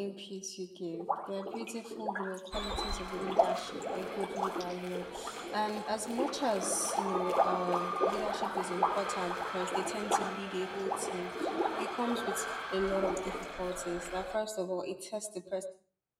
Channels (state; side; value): identical; both; correlation 1.00